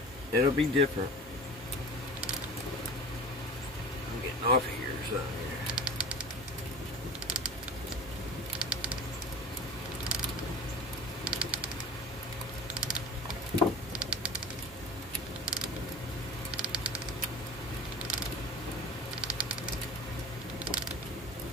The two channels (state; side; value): normal; both; correlation 0.37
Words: it'll be different. I'm getting off of here or something here.